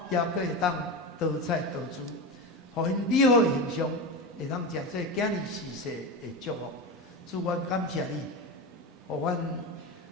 也佫会当多彩多姿，互因美好的形象会当诚做囝儿世世的祝福。主，阮感谢你，互阮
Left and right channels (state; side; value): normal; both; correlation 0.21